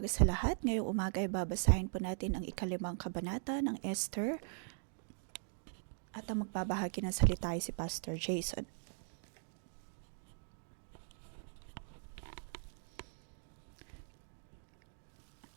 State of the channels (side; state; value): left; silent; digital silence